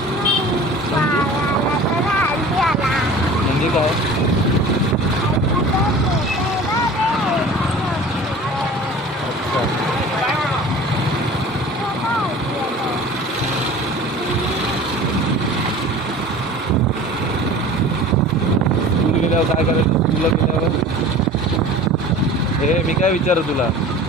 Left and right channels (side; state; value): both; normal; correlation 0.41